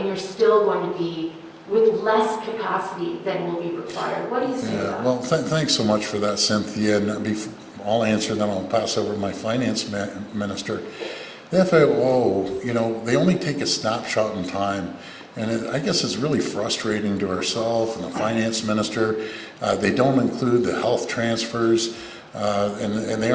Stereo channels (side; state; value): both; identical; correlation 1.00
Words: you're still going to be with less capacity than will be required. What do you say to that? Well, thanks so much for that, Cynthia. And I'll answer, then I'll pass over to my finance minister. The FAO, they only take a snapshot in time. And I guess it's really frustrating to ourselves and the finance minister. They don't include the health transfers, and they